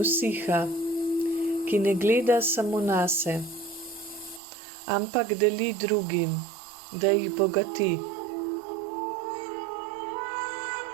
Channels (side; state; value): left; drops out; at 4.4 s